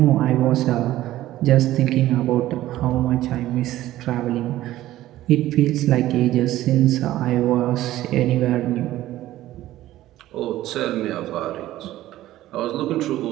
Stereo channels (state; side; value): quieter; left; 14.8 dB